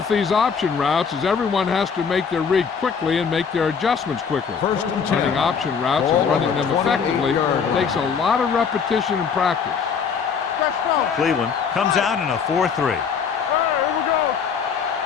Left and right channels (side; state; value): right; quieter; 6.3 dB